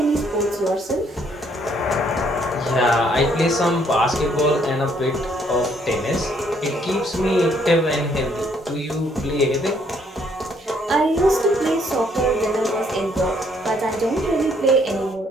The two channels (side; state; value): both; normal; correlation 0.67